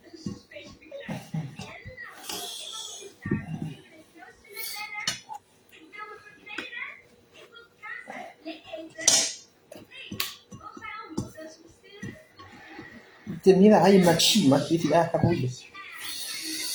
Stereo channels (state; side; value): identical; both; correlation 1.00